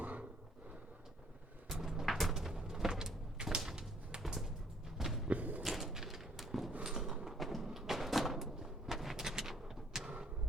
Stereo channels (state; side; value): normal; both; correlation 0.62